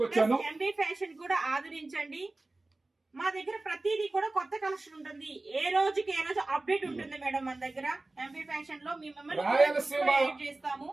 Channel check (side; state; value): left; quieter; 3.0 dB